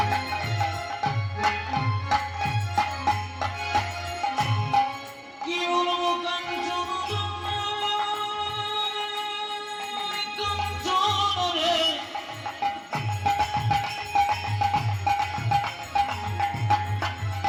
কি বলবো কাঞ্চন, কাঞ্চন রে,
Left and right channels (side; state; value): both; identical; correlation 1.00